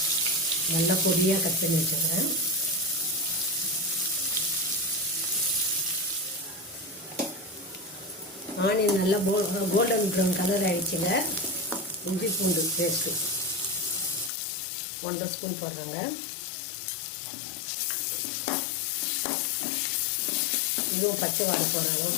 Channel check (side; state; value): right; drops out; at 14.3 s